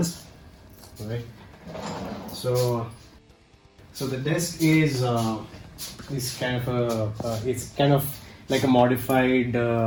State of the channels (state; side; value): identical; both; correlation 1.00